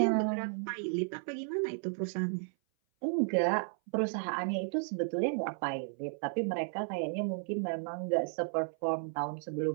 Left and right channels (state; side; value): silent; left; 55 dB below the other